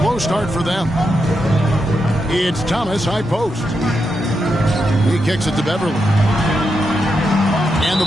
start for them. It's Thomas, high post. He kicks it to Beverly. And the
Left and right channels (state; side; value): normal; both; correlation 0.85